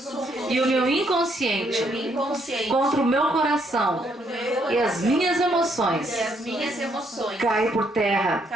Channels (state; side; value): normal; both; correlation 0.72